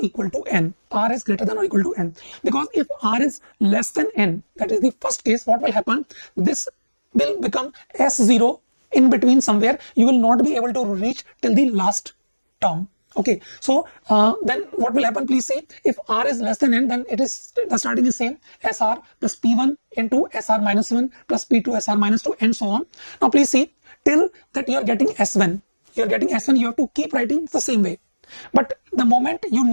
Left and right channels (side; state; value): both; inverted; correlation -1.00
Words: equal to n. R is greater than or equal to n. Because if r is less than n, that is the first case, what will happen? This will become S0 in between somewhere. You will not be able to reach till the last term. Okay, so then what will happen? Please see, if r is less than n, then it is the starting is same, SR plus P1 into SR minus 1 plus P2 SR minus 2 and so on. Now please see, till that you are getting S1, you have to keep writing the same way. But the moment you